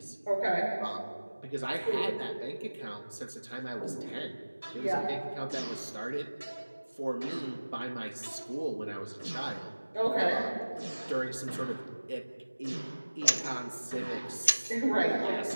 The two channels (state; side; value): inverted; both; correlation -1.00